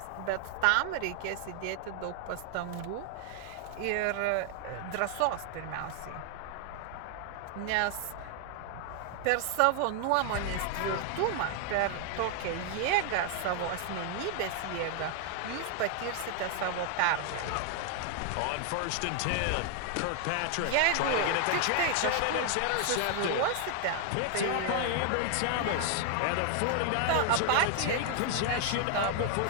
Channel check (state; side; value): different; both; correlation 0.00